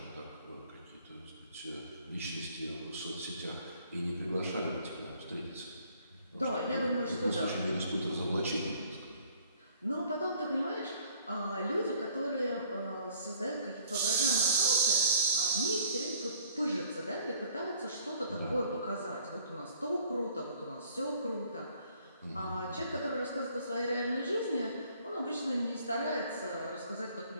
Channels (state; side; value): inverted; both; correlation -0.58